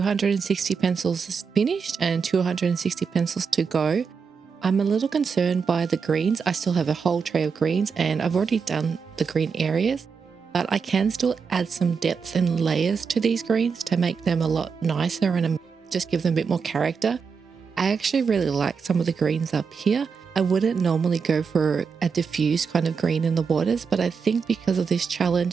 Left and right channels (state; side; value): quieter; left; 5.8 dB